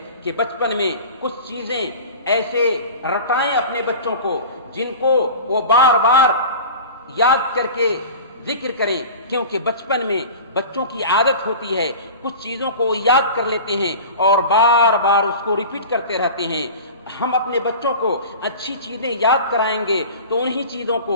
کہ بچپن میں کچھ چیزیں ایسے رٹائیں اپنے بچوں کو جن کو وہ بار بار یاد کر کے ذکر کریں، کیونکہ بچپن میں بچوں کی عادت ہوتی ہے کچھ چیزوں کو یاد کر لیتے ہیں اور بار بار اس کو ریپیٹ کرتے رہتے ہیں۔ ہم اپنے بچوں کو اچھی چیزیں یاد کرائیں گے تو انہی چیزوں کو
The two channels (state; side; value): inverted; both; correlation -0.35